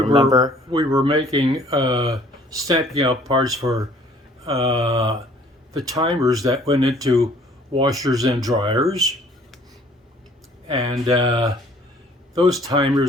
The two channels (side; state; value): both; normal; correlation 0.57